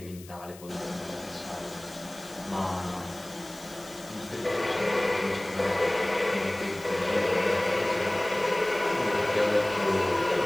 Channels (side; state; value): left; noise; hiss, 20 dB below the sound